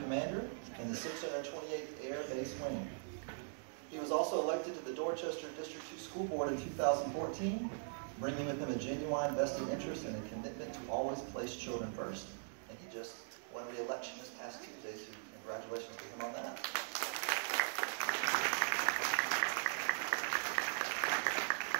in the 628th Air Base Wing. He was also elected to the Dorchester District 2 School Board in 2014, bringing with him a genuine vested interest and a commitment to always place children first. And he just won re-election this past Tuesday, so congratulations to him on that.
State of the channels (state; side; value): silent; left; digital silence